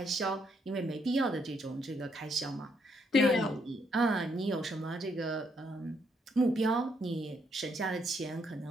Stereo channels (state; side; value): normal; both; correlation 0.74